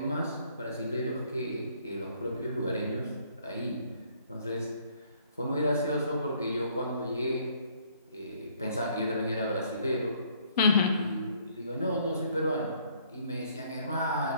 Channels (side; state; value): both; inverted; correlation -0.64